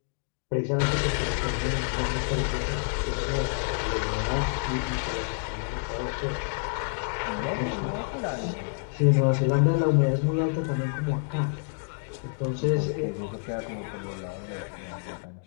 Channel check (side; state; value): right; silent; digital silence